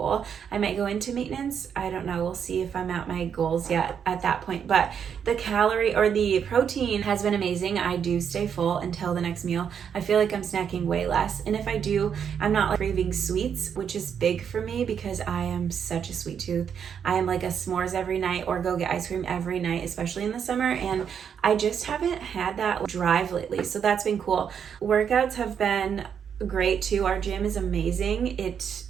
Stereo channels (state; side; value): quieter; left; 7.7 dB